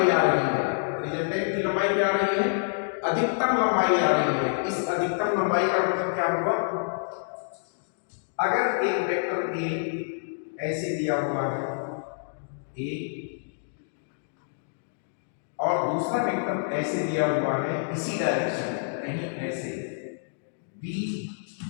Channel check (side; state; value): right; silent; digital silence